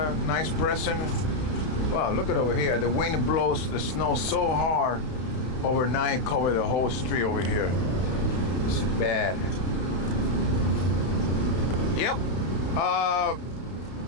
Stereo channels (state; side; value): late; right; 31 ms